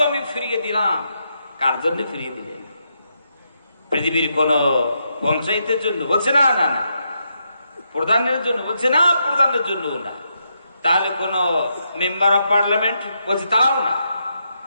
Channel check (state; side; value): inverted; both; correlation -0.81